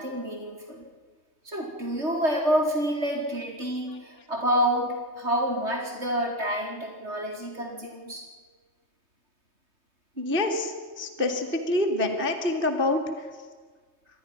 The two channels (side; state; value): left; late; 3.3 ms